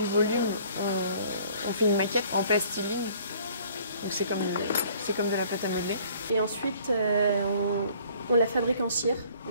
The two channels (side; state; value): both; inverted; correlation -0.56